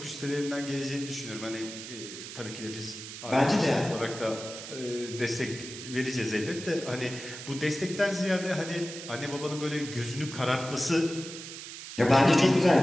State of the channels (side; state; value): right; noise; hiss, 11 dB below the sound